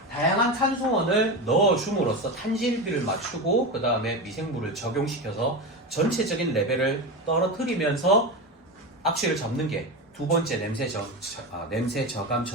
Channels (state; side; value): normal; both; correlation 0.20